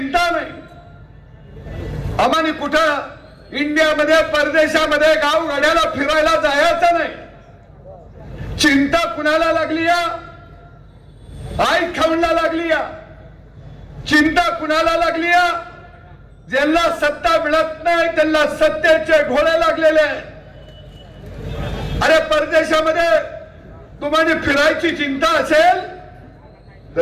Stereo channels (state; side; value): identical; both; correlation 1.00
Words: नाही. आम्हाला कुठं इंडियामध्ये परदेशामध्ये गावगाड्याला फिरायला जायचं नाही. चिंता कुणाला लागली या? आई खाऊला लागली या? चिंता कुणाला लागली या? ज्यांना सत्ता मिळत नाही त्यांना सत्तेचे घोडे लागलेले आहेत. अरे परदेशामध्ये तुम्हाला फिरायची चिंता असेल